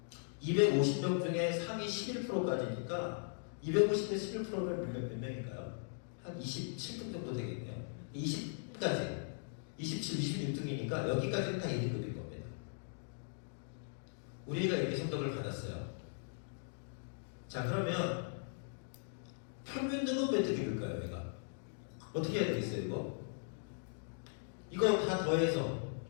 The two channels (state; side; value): silent; right; digital silence